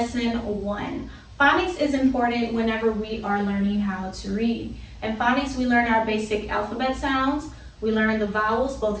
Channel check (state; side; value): identical; both; correlation 1.00